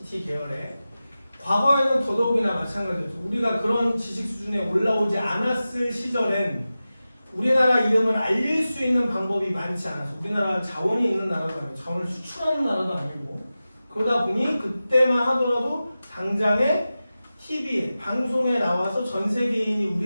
계열에 과거에는 더더욱이나 마찬가지였죠. 우리가 그런 지식 수준에 올라오지 않았을 시절엔 우리나라 이름을 알릴 수 있는 방법이 많지 않아서, 우리나라가 자원이 있는 나라도 아니고 자원을 수출하는 나라도 아니고, 그러다 보니 그때만 하더라도 당장에 TV에, 방송에 나와서 전 세계인이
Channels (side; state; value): both; inverted; correlation -0.95